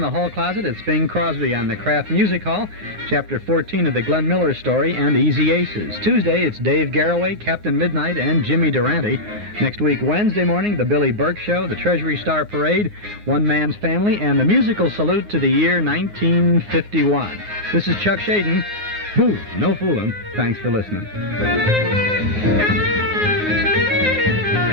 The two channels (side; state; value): left; late; 9.6 ms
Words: the hall closet, it's Bing Crosby on the Kraft Music Hall, Chapter 14 of the Glenn Miller Story, and Easy Aces. Tuesday, it's Dave Garroway, Captain Midnight, and Jimmy Durante. Next week, Wednesday morning, the Billy Burke Show, the Treasury Star Parade, One Man's Family, and the musical salute to the year 1951. This is Chuck Shaden. Boo, no fooling. Thanks for listening.